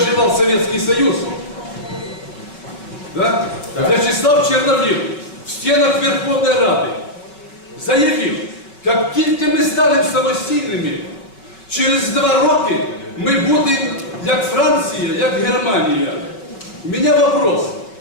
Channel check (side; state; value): right; late; 5.2 ms